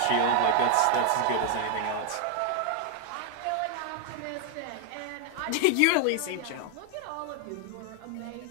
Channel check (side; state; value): both; different; correlation 0.00